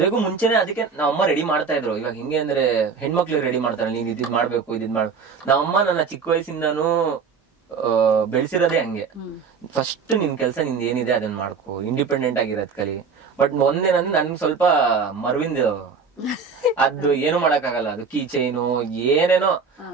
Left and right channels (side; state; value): left; quieter; 5.5 dB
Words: ಮುಂಚೆನೆ ಅದಕ್ಕೆ ನಾವಮ್ಮ ರೆಡಿ ಮಾಡ್ತಾ ಇದ್ರು. ಇವಾಗ ಹಿಂಗೆ ಅಂದ್ರೆ ಹೆಣ್ಮಕ್ಳಿಗೆ ರೆಡಿ ಮಾಡ್ತಾರೆ, ನೀನ್ ಇದ್ ಮಾಡ್ಬೇಕು ಇದ್ ಮಾಡು. ನಾವಮ್ಮ ನನ್ನ ಚಿಕ್ಕ ವಯಸ್ಸಿಂದಾನು ಬೆಳೆಸಿರೋದೇ ಹಂಗೆ. ಫಸ್ಟ್ ನಿನ್ ಕೆಲ್ಸ ನಿಂದ ಏನಿದೆ ಅದನ್ನ ಮಾಡ್ಕೋ, ಇಂಡಿಪೆಂಡೆಂಟ್ ಆಗಿರೋದ್ ಕಲಿ. ಬಟ್ ಒಂದೇನಂದ್ರೆ ನನ್ಗೆ ಸ್ವಲ್ಪ ಮರ್ವಿಂದ ಅದು ಏನು ಮಾಡಕ್ ಆಗಲ್ಲ. ಅದು ಕೀ ಚೈನು ಏನೇನೋ